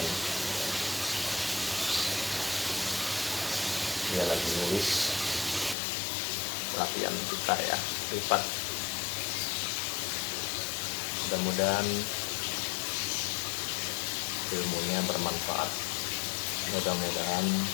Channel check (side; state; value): right; drops out; at 5.8 s